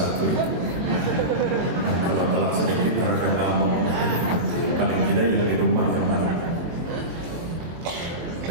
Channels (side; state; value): left; late; 23 ms